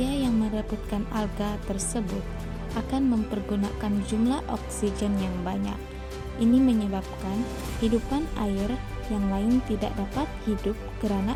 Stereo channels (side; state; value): both; identical; correlation 1.00